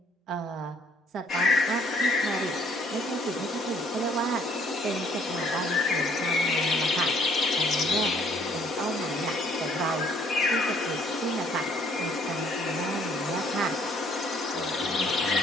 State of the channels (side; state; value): both; normal; correlation 0.62